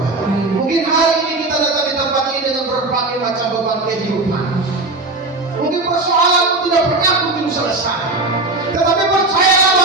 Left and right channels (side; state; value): left; quieter; 3.1 dB